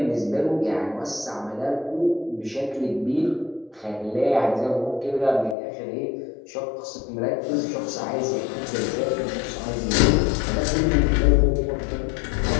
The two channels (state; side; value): drops out; right; at 5.6 s